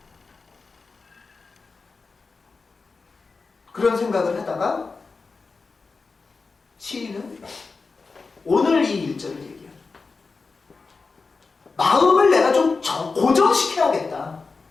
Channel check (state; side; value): quieter; right; 4.3 dB